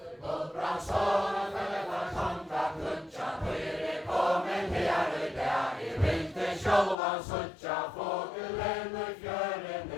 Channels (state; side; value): drops out; right; at 7.0 s